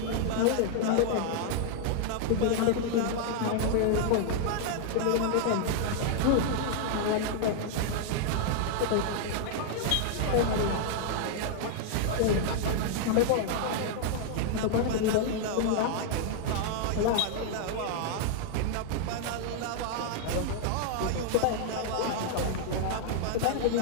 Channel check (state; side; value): different; both; correlation -0.01